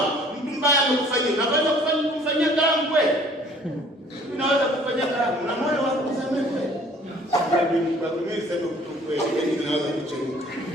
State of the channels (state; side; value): normal; both; correlation 0.54